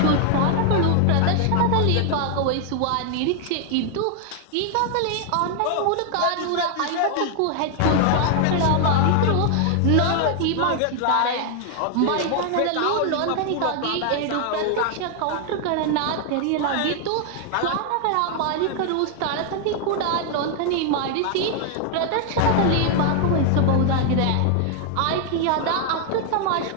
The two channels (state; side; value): different; both; correlation 0.00